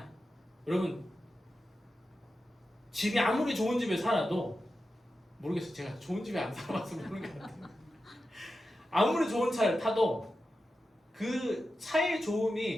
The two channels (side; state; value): both; normal; correlation 0.91